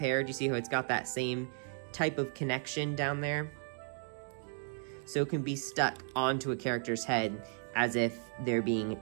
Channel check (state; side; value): silent; left; 55 dB below the other